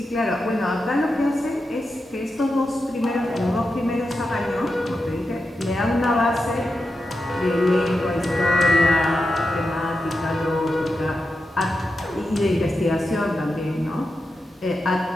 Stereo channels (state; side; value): normal; both; correlation 0.89